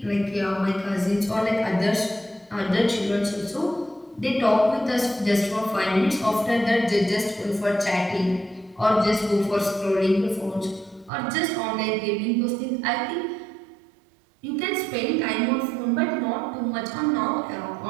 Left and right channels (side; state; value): left; drops out; at 11.1 s